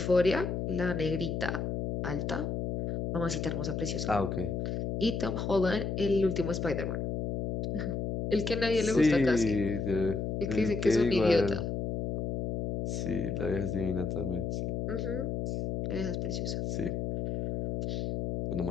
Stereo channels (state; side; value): noise; left; hum, 2 dB below the sound